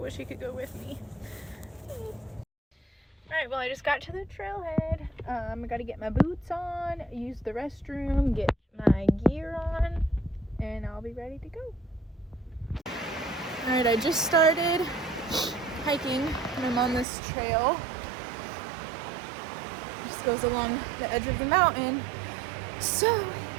he could go with me. Alright, well I just got to the trailhead. I gotta get my boots on, use the restroom, get my gear on, and I'll be ready to go. Alright, I just started hiking and I'm on this trail. It just goes along the edge of the mountain. So,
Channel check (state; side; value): drops out; left; at 17.1 s